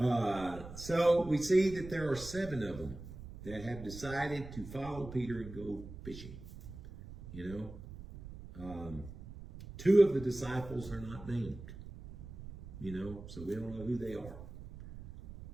So we see that there are 7 of them that have decided to follow Peter and go fishing. 2 of the disciples are not named, so we don't know who they are.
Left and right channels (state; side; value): noise; right; rumble, 13 dB below the sound